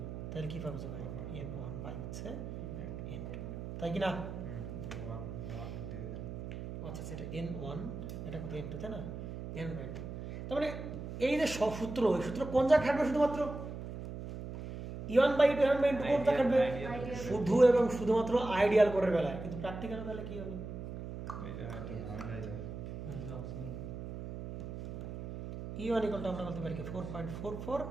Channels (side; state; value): right; noise; hum, 8 dB below the sound